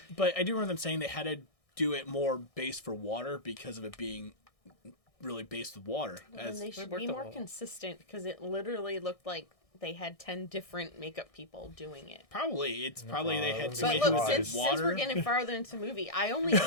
But I do remember them saying they had to do it more based for water because of it being really based with water. And they should worked be a more lot. consistent because it literally looked like they had 10 different makeup people doing it. Probably they had But somebody But who look, was since in water. we're getting farther into the movie, I only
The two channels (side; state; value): right; late; 1.6 ms